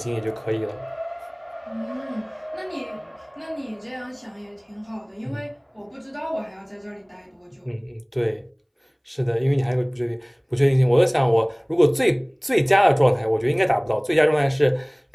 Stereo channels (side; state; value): both; identical; correlation 1.00